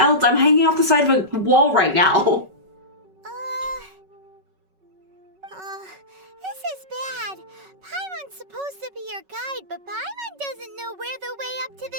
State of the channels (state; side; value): late; left; 5.3 ms